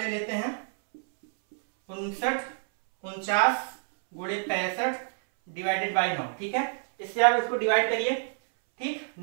लेते हैं। 59 49 × 65 डिवाइडेड बाई 9, ठीक है। इससे आप इसको डिवाइड करिए, ठीक।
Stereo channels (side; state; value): left; silent; 60 dB below the other